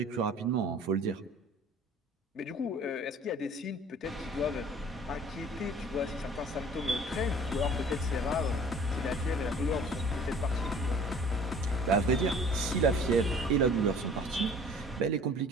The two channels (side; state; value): both; normal; correlation 0.49